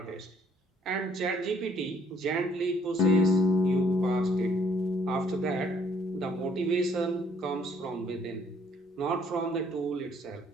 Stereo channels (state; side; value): normal; both; correlation 0.63